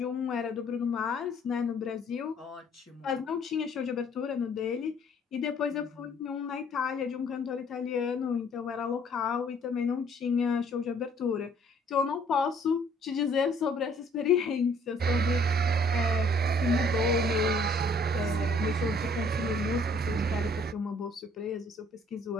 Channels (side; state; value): both; normal; correlation 0.60